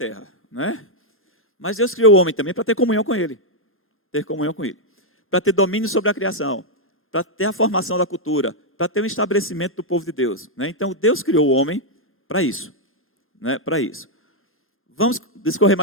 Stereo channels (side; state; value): both; normal; correlation -0.02